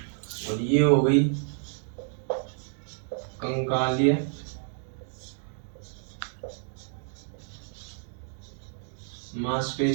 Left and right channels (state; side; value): silent; left; digital silence